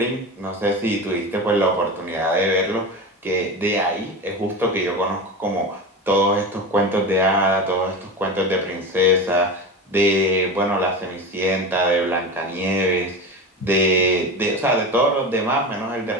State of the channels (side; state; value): both; normal; correlation 0.25